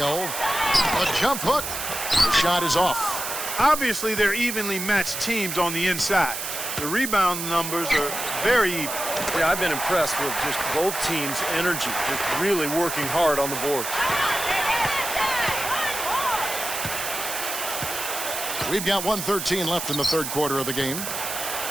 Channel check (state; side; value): noise; right; hiss, 5 dB below the sound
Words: A jump hook. The shot is off. Obviously, they're evenly matched teams on the inside. The rebound numbers are very even. Yeah, I've been impressed with just both teams' energy, just really working hard on the board. We've got 1:13 left in the third quarter of the game.